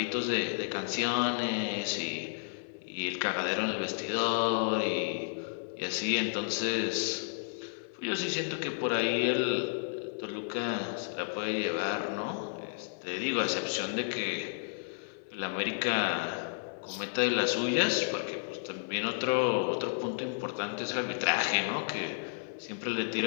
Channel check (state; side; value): silent; right; 56 dB below the other